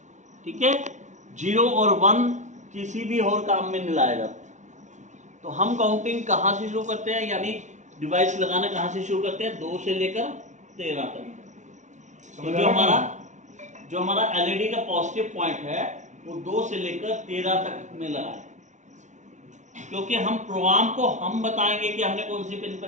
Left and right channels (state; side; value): late; left; 0.35 ms